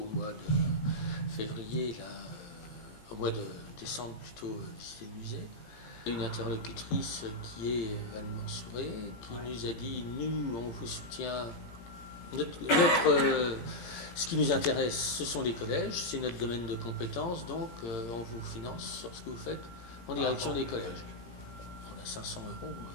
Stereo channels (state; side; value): late; right; 18 ms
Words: au mois de février, là, au mois de décembre plutôt, visiter le musée. Une interlocutrice qui est Anne Mansouré, qui nous a dit, nous, on vous soutient, ce qui nous intéresse, ce sont les collèges, c'est notre domaine de compétences, donc on vous finance sur ce que vous faites en direction des collèges. On a 500 €